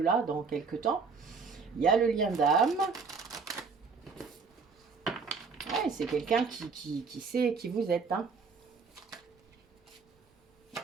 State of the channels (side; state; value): left; quieter; 5.0 dB